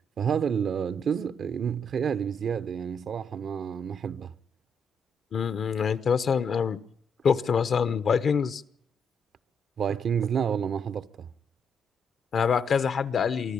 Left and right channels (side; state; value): both; normal; correlation 0.74